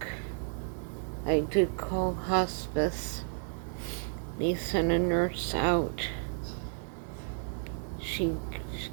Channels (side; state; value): left; silent; digital silence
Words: I did call hospice. They sent a nurse out. She